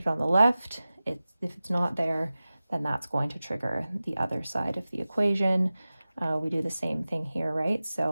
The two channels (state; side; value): inverted; both; correlation -0.96